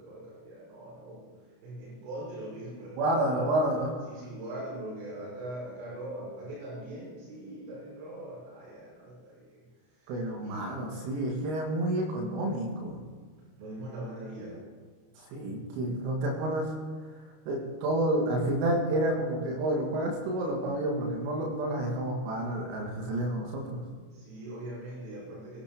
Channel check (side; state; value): left; late; 32 ms